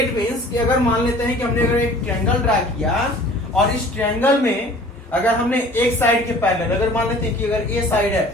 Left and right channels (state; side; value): normal; both; correlation 0.48